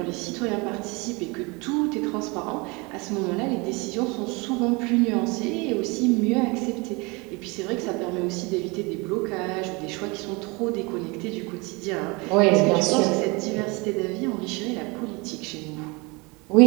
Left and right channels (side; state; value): left; quieter; 27.2 dB